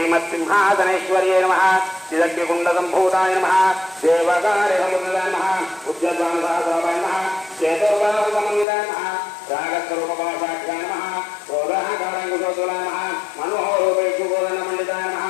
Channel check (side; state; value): right; drops out; at 8.7 s